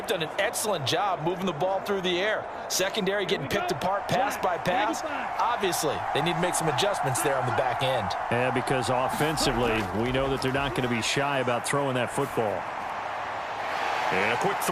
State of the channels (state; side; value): identical; both; correlation 1.00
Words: done an excellent job moving the ball through the air. Secondary getting picked apart pass by pass. Obviously, they need to make some adjustments there on the back end. Yeah, because offensively, we know that they're not going to be shy about throwing that football. And a quick